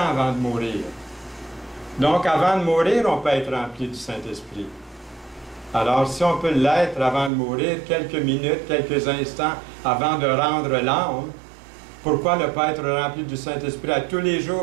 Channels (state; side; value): drops out; left; at 7.3 s